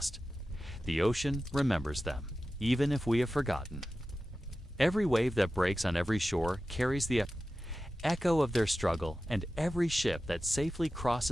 The ocean remembers them, even if we have forgotten. Every wave that breaks on every shore carries the echo of their struggle, and every ship that safely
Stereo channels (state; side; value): normal; both; correlation 0.94